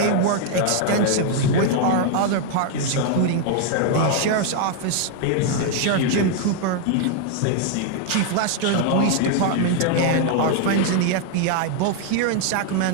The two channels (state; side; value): different; both; correlation 0.00